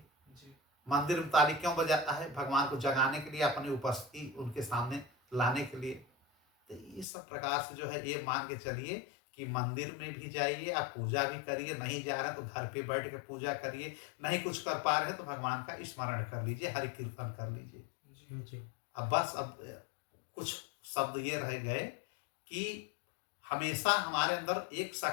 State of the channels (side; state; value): right; drops out; at 7.1 s